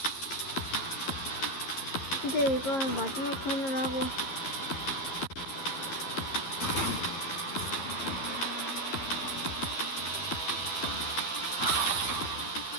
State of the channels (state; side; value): late; right; 11 ms